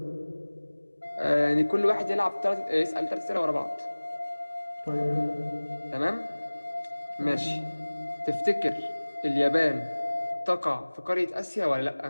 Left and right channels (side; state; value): both; inverted; correlation -1.00